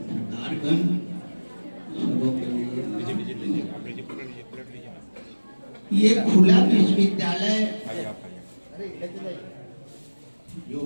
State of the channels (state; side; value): inverted; both; correlation -1.00